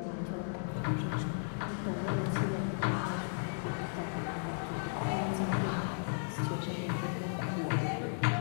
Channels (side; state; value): right; silent; 54 dB below the other